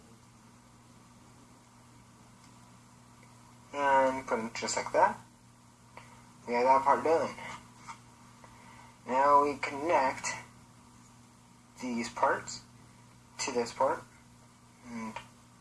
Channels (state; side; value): identical; both; correlation 1.00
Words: And put them just like that. We have that part done. Now we connect these parts to this part. And